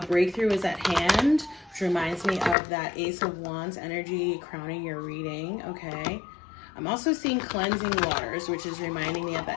breakthrough is at hand, which reminds me of that Ace of Wands energy crowning your reading, okay? I'm also seeing cleansing waters, which is reminding me of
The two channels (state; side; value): drops out; right; at 2.6 s